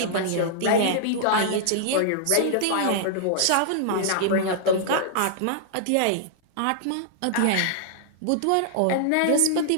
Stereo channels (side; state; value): both; different; correlation -0.01